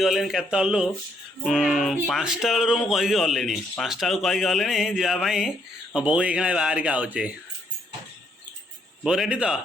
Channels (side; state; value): both; normal; correlation 0.71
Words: केतलु 5टा बेलू मुझे गलिनी 5टा बेलू कहीकि गलिनी जावाई बो ये बाहर के आउचे बो रेडी तो